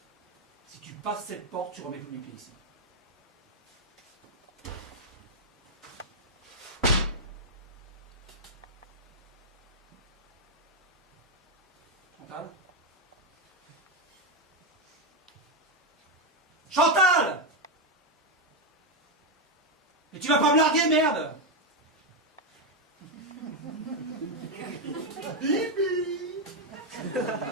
Si tu passes cette porte, tu remets plus les pieds ici. Chantal? Chantal! Mais tu vas pas me larguer, merde! Bibi.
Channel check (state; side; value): normal; both; correlation 0.05